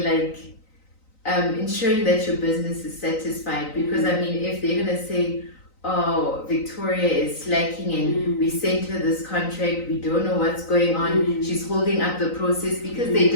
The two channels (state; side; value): late; right; 3.9 ms